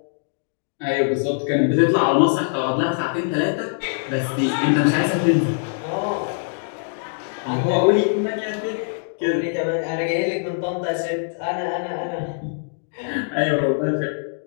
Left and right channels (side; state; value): right; silent; digital silence